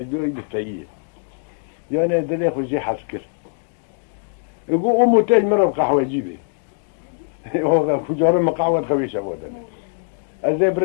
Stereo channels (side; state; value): right; silent; 65 dB below the other